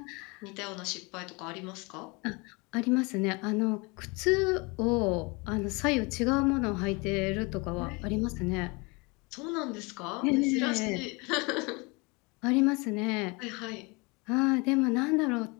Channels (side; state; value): right; quieter; 27.9 dB